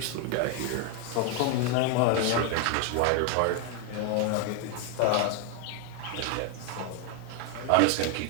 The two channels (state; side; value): different; both; correlation 0.01